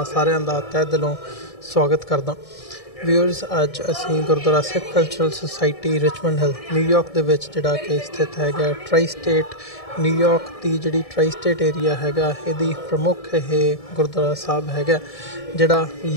ਸਾਰਿਆਂ ਦਾ ਤਹਿ ਦਿਲੋਂ ਸਵਾਗਤ ਕਰਦਾ। ਵਿਊਅਰਸ, ਅੱਜ ਅਸੀਂ Gurdwara Sikh cultural society Richmond Hill New York ਦੇ ਵਿੱਚ ਜਿਹੜਾ ਕਿ ਸਥਿਤ ਹੈਗਾ ਟ੍ਰਾਈ ਸਟੇਟ ਨਿਊਯਾਰਕ ਦੀ ਜਿਹੜੀ ਟ੍ਰਾਈ ਸਟੇਟ ਏਰੀਆ ਹੈਗਾ, ਇਹਦੀ ਪ੍ਰਮੁੱਖ ਇਹ ਗੁਰਦੁਆਰਾ ਸਾਹਿਬ ਹੈਗਾ ਜਿਹੜਾ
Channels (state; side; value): late; right; 1.7 ms